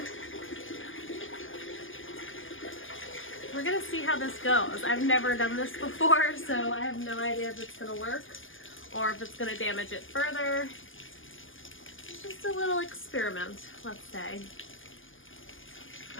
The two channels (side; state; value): right; late; 0.58 ms